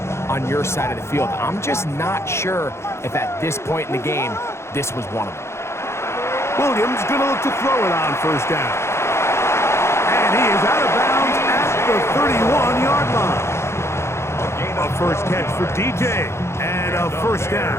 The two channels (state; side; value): late; right; 0.13 ms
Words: on your side of the field. I'm just not sure if at this point in the game, this was one of them. Williams going to look to throw it on first down. And he is out of bounds at the 31-yard line. A first catch for DJ and a first